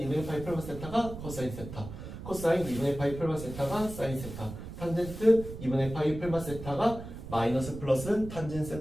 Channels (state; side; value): noise; right; rumble, 10 dB below the sound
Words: 파이 풀마 세타가 코사인 세타, 코사인 2분의 파이 풀마 세타가 사인 세타, 탄젠트 2분의 파이 풀마 세타가 마이너스 플러스 탄젠